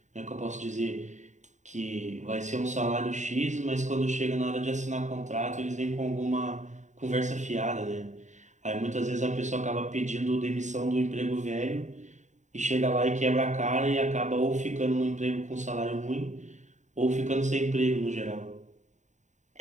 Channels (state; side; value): late; left; 0.35 ms